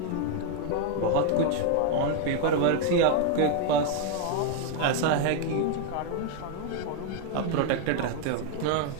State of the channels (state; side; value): different; both; correlation 0.00